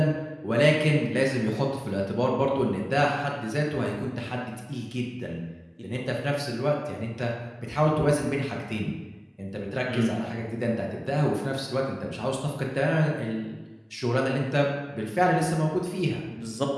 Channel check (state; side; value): identical; both; correlation 1.00